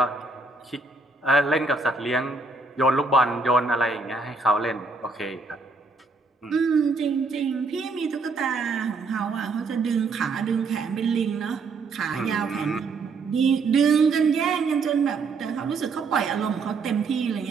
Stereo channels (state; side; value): quieter; left; 3.9 dB